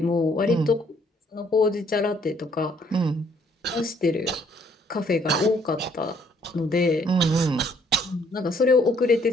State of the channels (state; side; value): normal; both; correlation 0.65